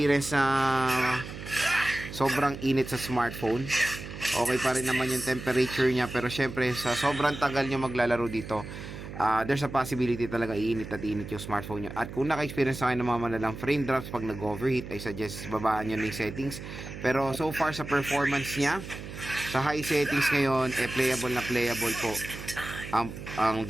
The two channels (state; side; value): noise; right; hum, 11 dB below the sound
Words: na sobrang init sa smartphone. Okay pa rin naman yung temperature niya, pero syempre sa sobrang tagal nyo maglalaro dito, there's a possibility talaga iinit at init yung smartphone nyo. At kung naka-experience na kayo ng mga malalang frame drops pag nag-overheat, I suggest babaan nyo na yung settings. Pero so far sa performance niya, sa high settings ngayon, playable po ang